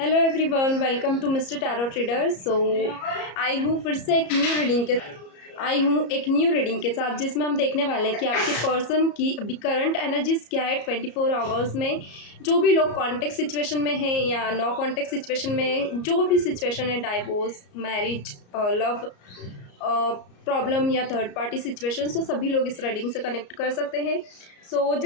everyone, welcome to mister tarot trader. I हूँ फिर से एक न्यू रीडिंग के साथ, जिसमें हम देखने वाले हैं कि आपके पर्सन की अभी करंट एनर्जीज क्या है 24 आवर्स में। जो भी लोग कॉन्टेक्ट सिचुएशन में हैं या नो कॉन्टेक्ट सिचुएशन में, जो भी सिचुएशन है, डाइवोर्स, मैरिज, लव प्रॉब्लम या थर्ड पार्टी सिचुएशन, तो सभी लोग इस रीडिंग से कनेक्ट कर सकते हैं।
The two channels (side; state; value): right; late; 34 ms